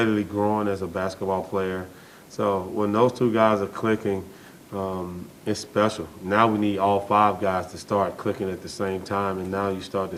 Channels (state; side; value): identical; both; correlation 1.00